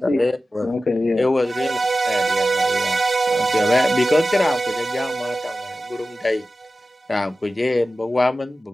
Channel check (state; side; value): normal; both; correlation 0.94